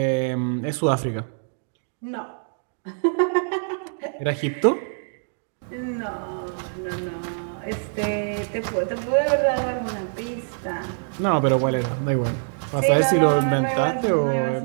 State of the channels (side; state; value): left; silent; digital silence